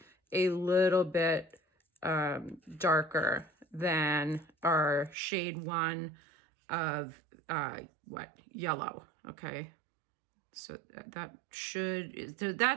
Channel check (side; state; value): left; drops out; at 5.2 s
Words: a little bit darker than our shade 1 of yellow. Okay, so that should, so